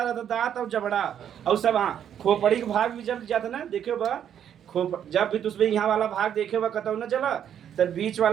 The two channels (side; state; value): left; quieter; 9.4 dB